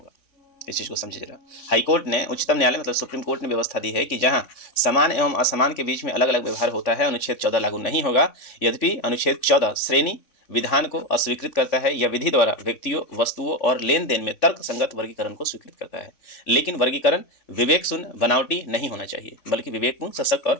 इस चीज को समझिए जरा। हाईकोर्ट ने, उच्चतम न्यायालय मतलब सुप्रीम कोर्ट ने व्यवस्था दी है कि जहां समान एवं असमान के बीच में अलग अलग व्यवहार होता है, अनुच्छेद 14 लागू नहीं होगा। यद्यपि अनुच्छेद 14 श्रेणी विधान को अस्वीकृत करता है या विधि द्वारा व्यक्तियों, वस्तुओं और लेन देन में तर्क संगत वर्गीकरण को स्वीकृत करता है, लेकिन वर्गीकरण विवेक शून्य, बनावटी नहीं होना चाहिए, बल्कि विवेकपूर्ण, सशक्त और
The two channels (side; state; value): right; late; 3.6 ms